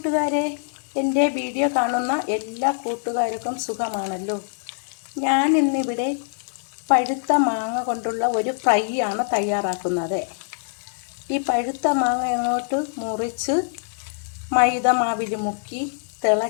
എൻ്റെ video കാണുന്ന എല്ലാ കൂട്ടുകാർക്കും സുഖമാണല്ലോ. ഞാൻ ഇന്നിവിടെ പഴുത്ത മാങ്ങ കൊണ്ടുള്ള ഒരു ഫ്രൈ ആണ് തയ്യാറാക്കുന്നത്. ഈ പഴുത്ത മാങ്ങ അങ്ങോട്ട് മുറിച്ച് മൈദ മാവിൽ മുക്കി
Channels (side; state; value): right; silent; digital silence